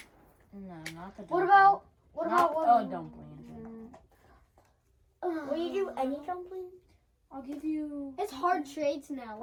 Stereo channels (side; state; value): both; identical; correlation 1.00